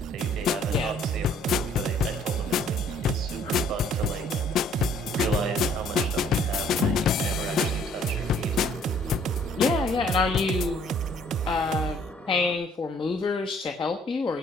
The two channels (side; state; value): both; normal; correlation 0.60